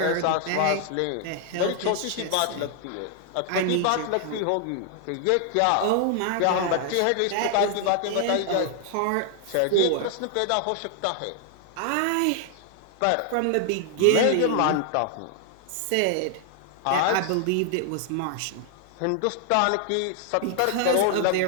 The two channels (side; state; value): both; different; correlation 0.00